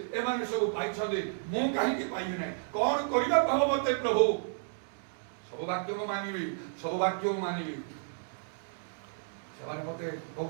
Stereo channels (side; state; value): left; silent; digital silence